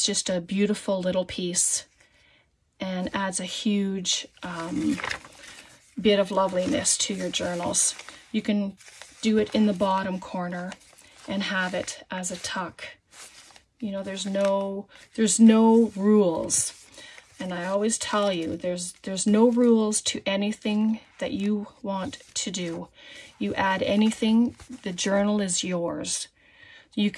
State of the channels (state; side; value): identical; both; correlation 1.00